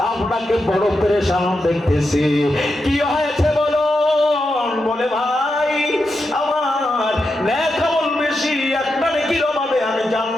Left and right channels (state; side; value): normal; both; correlation 0.87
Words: আপনাকে বড় পেরেশান দেখতেছি, কি হয়েছে বলুন? বলে ভাই আমার নেক আমল বেশি, একটা নেকির অভাবে আমি